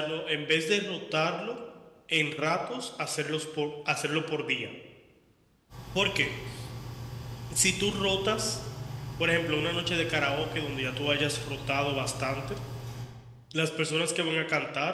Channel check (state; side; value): identical; both; correlation 1.00